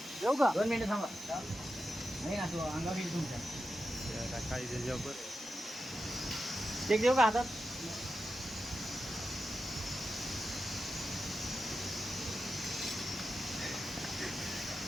येऊ का 2 मिनिटं थांबा नाही ना तो अंगावर येईल तुमच्या काही जेव बरं ते देऊ का हातात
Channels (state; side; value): normal; both; correlation 0.90